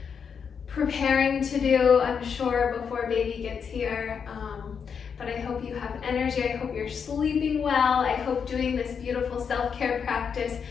preparing to do, I'm sure, before baby gets here. But I hope you have energy. I hope you're sleeping well. I hope doing this beautiful self-care practice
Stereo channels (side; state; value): right; quieter; 6.6 dB